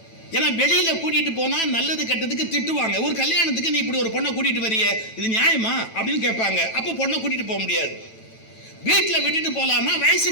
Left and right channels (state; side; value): late; right; 9.1 ms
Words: ஏன்னா வெளியில கூட்டிட்டு போனா நல்லது கெட்டதுக்கு திட்டுவாங்க. ஒரு கல்யாணத்துக்கு நீ இப்படி ஒரு பொண்ணை கூட்டிட்டு வரிய, இது நியாயமா அப்படின்னு கேட்பாங்க. அப்ப பொண்ணை கூட்டிட்டு போக முடியாது. வீட்டில் விட்டுட்டு போகலாமா,